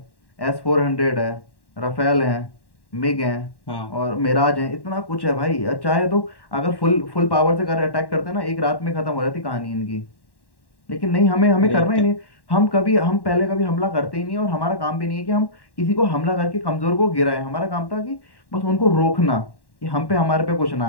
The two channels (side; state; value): right; late; 1.1 ms